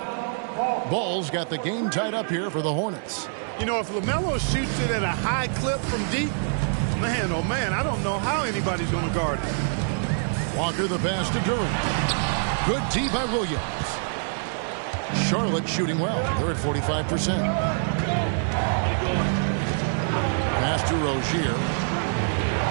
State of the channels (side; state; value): left; silent; digital silence